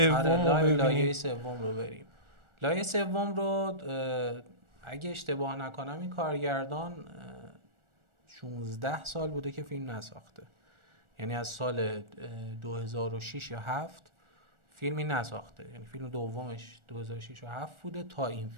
رو ببینیم؟ لایه سوم رو بریم. لایه سوم رو اگه اشتباه نکنم این کارگردان 16 سال بوده که فیلم نساخته، یعنی از سال 2006 یا 7 فیلمی نساخته، یعنی فیلم دومش 2006 و 7 بوده تا این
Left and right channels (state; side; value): late; left; 1.4 ms